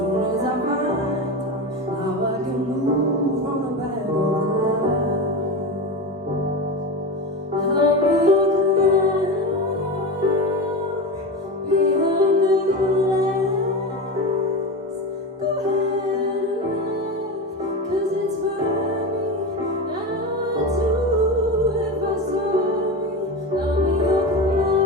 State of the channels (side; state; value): both; normal; correlation 0.22